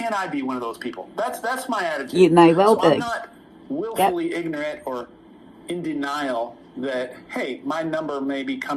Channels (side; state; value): both; identical; correlation 1.00